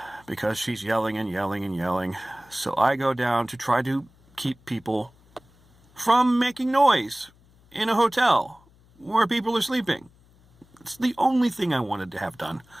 because she's yelling and yelling and yelling. So I go down to try to keep people from making noise in a hotel where people are sleeping. It's the only thing I wanted to have done.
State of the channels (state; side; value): noise; left; hum, 29 dB below the sound